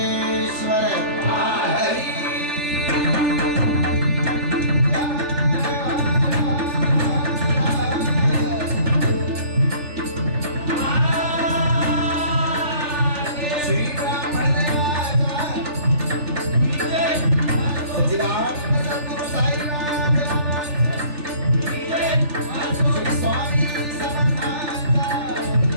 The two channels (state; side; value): late; left; 3.4 ms